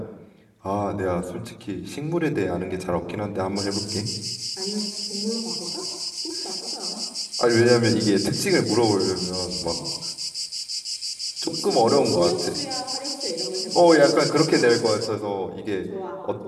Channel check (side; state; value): both; identical; correlation 1.00